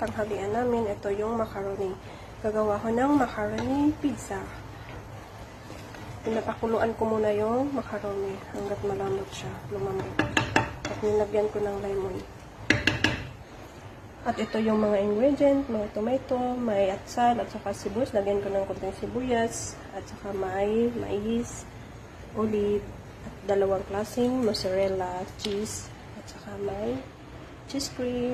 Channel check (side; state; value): both; identical; correlation 1.00